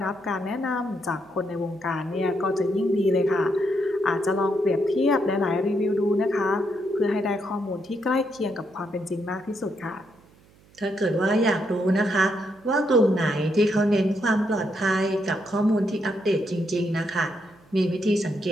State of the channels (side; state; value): right; noise; hum, 29 dB below the sound